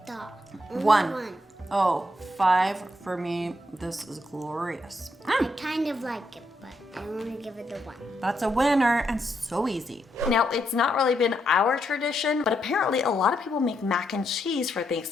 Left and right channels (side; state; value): both; normal; correlation 0.79